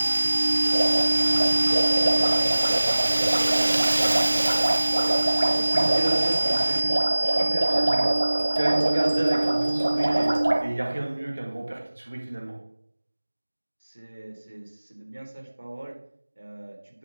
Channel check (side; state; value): both; inverted; correlation -1.00